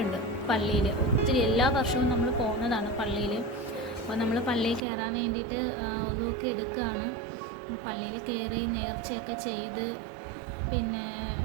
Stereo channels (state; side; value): drops out; left; at 4.8 s